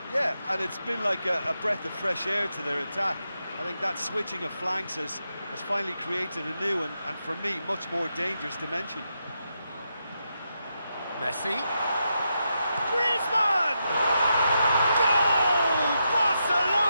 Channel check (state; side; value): inverted; both; correlation -0.84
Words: Yeah, and it's been like a breath of fresh air to their attack. I think that switching of flanks has finally created a new and for me, much more dangerous dimension. Messi. Griezmann! Goal!